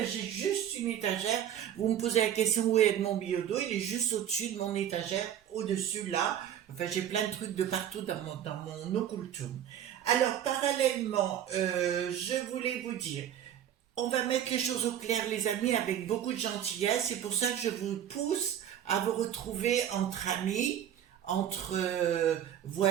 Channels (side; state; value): left; quieter; 10.3 dB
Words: juste une étagère. Vous me posez la question où est Edmond Biyodo, il est juste au-dessus de mon étagère, au-dessus là. Enfin, j'ai plein de trucs de partout dans mon occultum. Alors, parallèlement, je voulais vous dire, on va mettre les choses au clair, les amis, avec beaucoup de gentillesse. C'est pour ça que je vous pousse à vous retrouver entre amis, entre